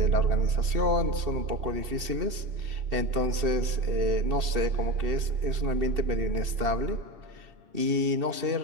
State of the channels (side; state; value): left; late; 2.7 ms